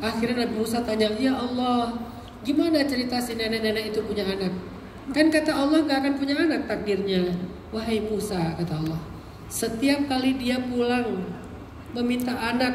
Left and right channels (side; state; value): both; identical; correlation 1.00